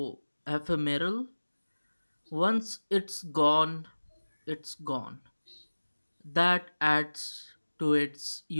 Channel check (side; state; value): both; inverted; correlation -1.00